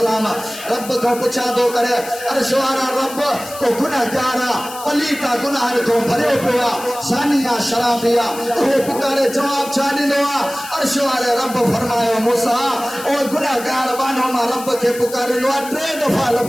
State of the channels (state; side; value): noise; left; hiss, 13 dB below the sound